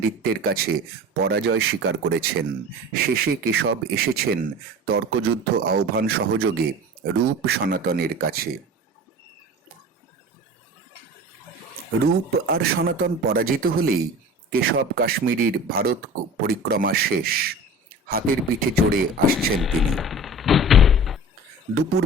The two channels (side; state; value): both; normal; correlation 0.38